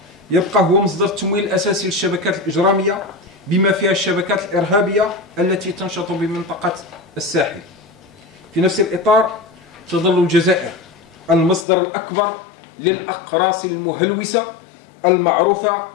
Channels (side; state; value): right; drops out; at 11.7 s